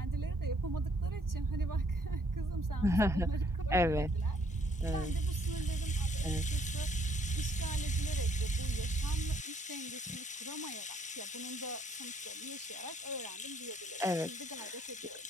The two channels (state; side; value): normal; both; correlation 0.66